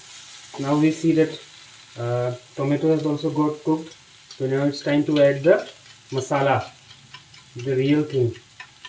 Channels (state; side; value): identical; both; correlation 1.00